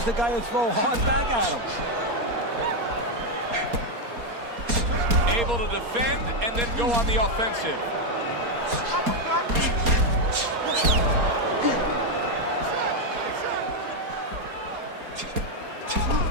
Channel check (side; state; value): left; late; 4.3 ms